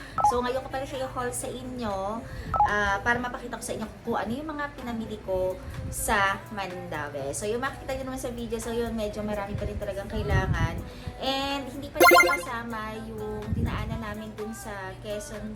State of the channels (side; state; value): both; identical; correlation 1.00